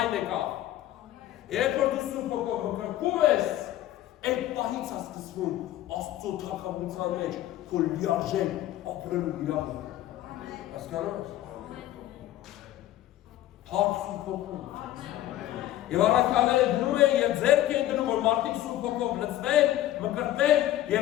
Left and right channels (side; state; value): right; quieter; 13.8 dB